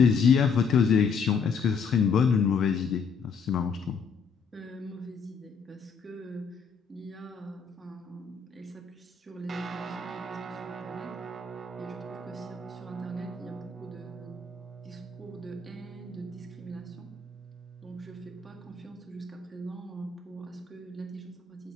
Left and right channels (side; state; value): right; quieter; 5.4 dB